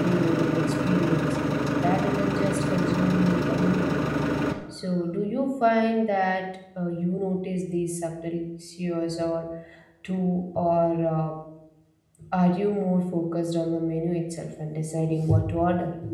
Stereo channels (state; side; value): identical; both; correlation 1.00